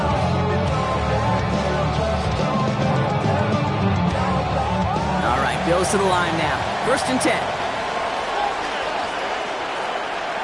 All right, Bills to the line now. 1st and 10.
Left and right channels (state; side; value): identical; both; correlation 1.00